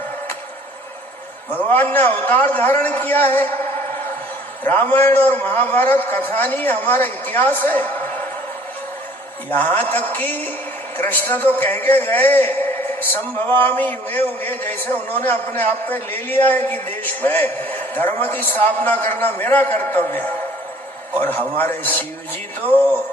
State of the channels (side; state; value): both; normal; correlation 0.54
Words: भगवान ने अवतार धारण किया है। रामायण और महाभारत कथा नहीं, हमारा इतिहास है। यहां तक कि कृष्ण तो कह के गए, संभवामि युगे युगे, जैसे उन्होंने अपने आप पे ले लिया है कि देश में धर्म की स्थापना करना मेरा कर्तव्य है। और हमारे शिव जी तो